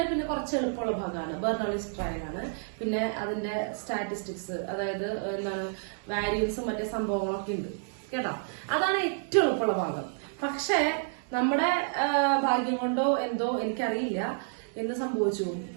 പിന്നെ കുറച്ച് എളുപ്പമുള്ള ഭാഗമാണ് ബെർണോളിസ് ട്രയൽ ആണ്. പിന്നെ അതിന്റെ സ്റ്റാറ്റിസ്റ്റിക്സ്, അതായത് എന്താണ് വാരിയൻസും മറ്റേ സംഭവങ്ങളൊക്കെ ഉണ്ട് കേട്ടോ. അതാണ് ഏറ്റവും എളുപ്പമുള്ള ഭാഗം. പക്ഷേ നമ്മുടെ ഭാഗ്യം കൊണ്ടോ എന്തോ എനിക്കറിയില്ല എന്ത് സംഭവിച്ചു,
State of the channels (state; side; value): silent; left; digital silence